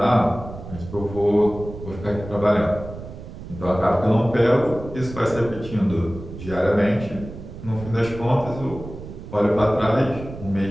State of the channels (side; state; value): right; noise; rumble, 12 dB below the sound